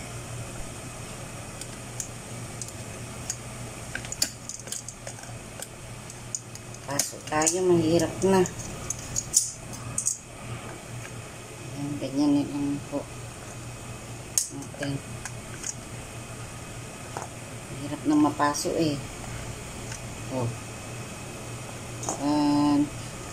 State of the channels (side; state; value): both; identical; correlation 1.00